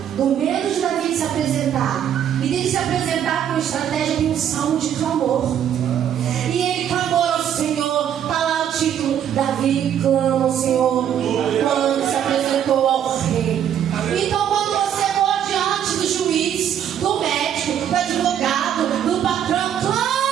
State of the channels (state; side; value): quieter; left; 9.6 dB